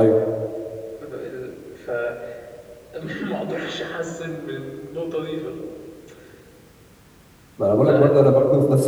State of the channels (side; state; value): both; identical; correlation 1.00